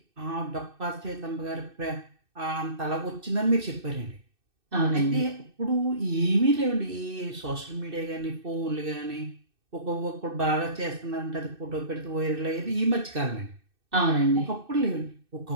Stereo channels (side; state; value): left; late; 2.6 ms